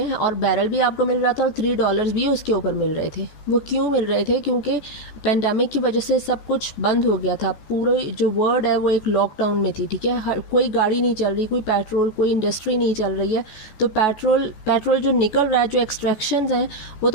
और बैरल भी आपको मिल रहा था और $3 भी उसके ऊपर मिल रहे थे। वो क्यों मिल रहे थे? क्योंकि पेंडेमिक की वजह से सब कुछ बंद हो गया था, पूरे जो वर्ल्ड है वो एक लॉकडाउन में थी। ठीक है, कोई गाड़ी नहीं चल रही, कोई पेट्रोल, कोई इंडस्ट्री नहीं चल रही है, तो पेट्रोल जो निकल रहा है, जो एक्सट्रैक्शंस हैं वो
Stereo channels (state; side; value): late; right; 14 ms